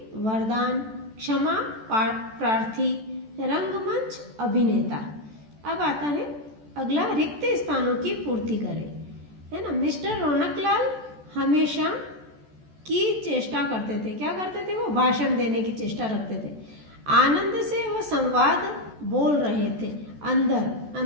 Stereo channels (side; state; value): left; late; 14 ms